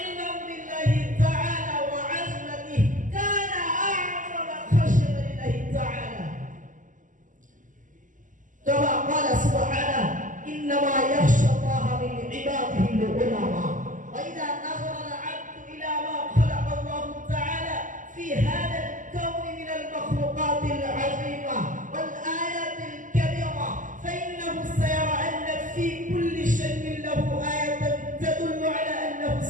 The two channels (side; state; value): left; late; 0.38 ms